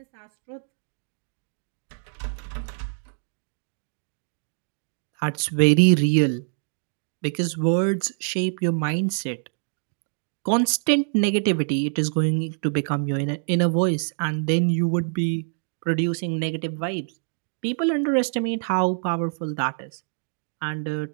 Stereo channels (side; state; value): left; silent; digital silence